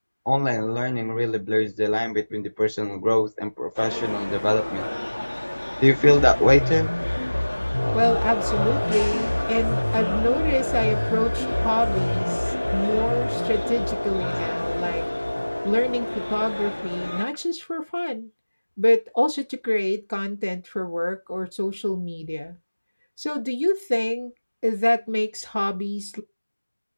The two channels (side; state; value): both; inverted; correlation -1.00